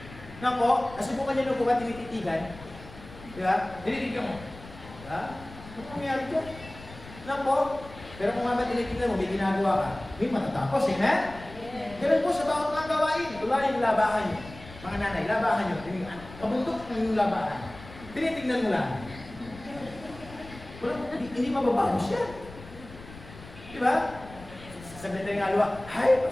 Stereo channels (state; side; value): noise; left; rumble, 17 dB below the sound